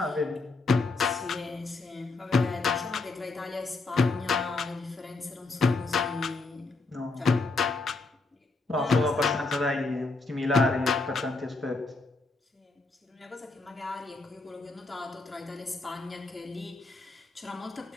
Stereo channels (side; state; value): right; quieter; 3.5 dB